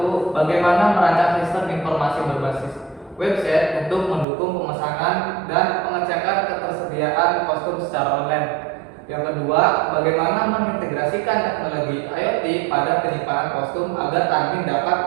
Bagaimana merancang sistem informasi berbasis website untuk mendukung pemesanan dan pengecekan ketersediaan kostum secara online. Yang kedua, bagaimana mengintegrasikan teknologi IoT pada penyimpanan kostum agar admin dapat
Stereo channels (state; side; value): drops out; left; at 4.2 s